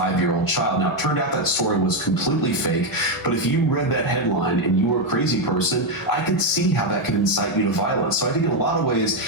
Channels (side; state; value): both; normal; correlation 0.04